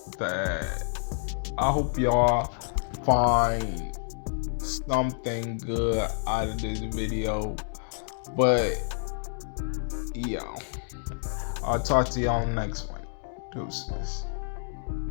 y'all find something good out of this video. But yeah, I'll talk to y'all next one. Deuces.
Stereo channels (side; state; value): right; silent; digital silence